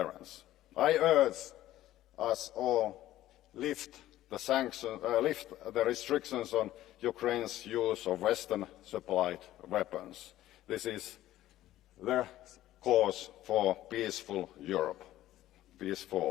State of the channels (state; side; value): quieter; right; 14.3 dB